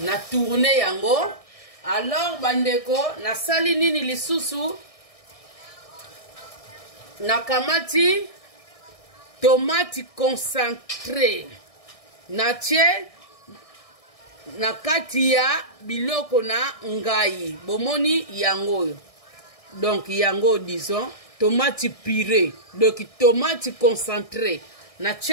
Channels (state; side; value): late; right; 1.6 ms